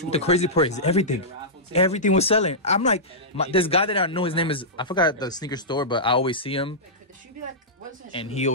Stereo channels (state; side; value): normal; both; correlation -0.14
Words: crazy part is everything was selling. I'm like, this guy that I know, his name is, I forgot the sneaker store, but I always see him, and he